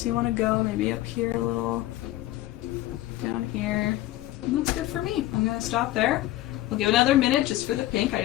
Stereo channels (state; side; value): quieter; right; 15.9 dB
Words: do you want to go? Maybe up here a little. Down here. And that's good for me. I'm going to stop there. We'll give another minute just for the pink. I